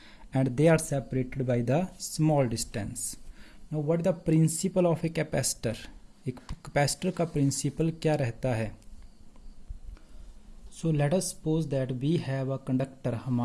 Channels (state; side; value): identical; both; correlation 1.00